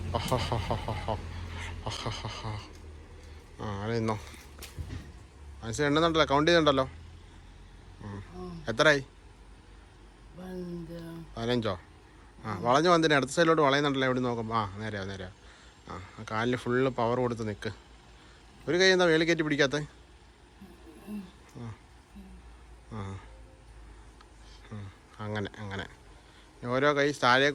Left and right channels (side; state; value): both; identical; correlation 1.00